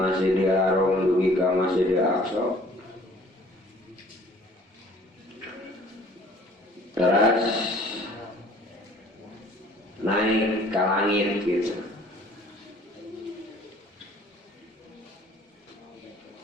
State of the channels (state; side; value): normal; both; correlation 0.54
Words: Haram dugi ka Masjidil Aqsa. Teras ka langit gitu.